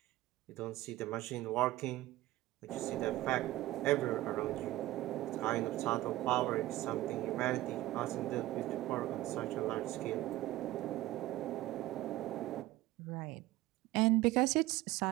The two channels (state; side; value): quieter; left; 16.9 dB